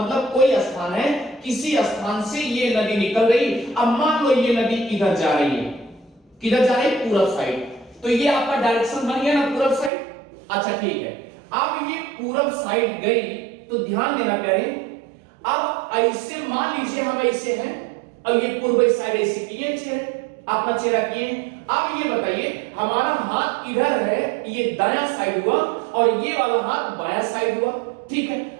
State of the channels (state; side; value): drops out; left; at 9.9 s